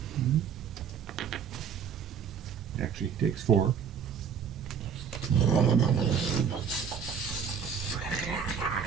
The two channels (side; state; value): left; quieter; 7.1 dB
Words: actually takes 4.